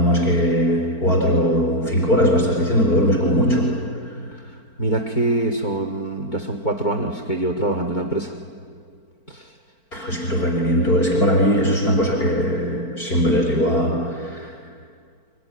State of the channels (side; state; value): right; late; 4.4 ms